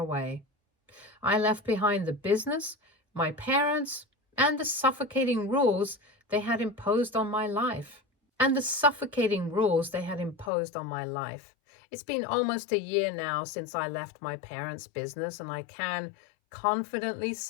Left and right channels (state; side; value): drops out; right; at 10.5 s